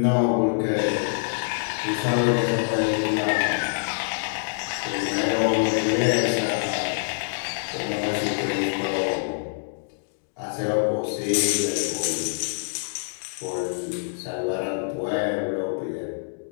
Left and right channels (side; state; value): right; silent; digital silence